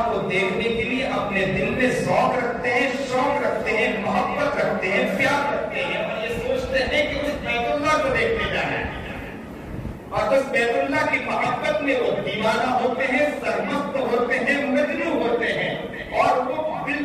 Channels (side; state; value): both; identical; correlation 1.00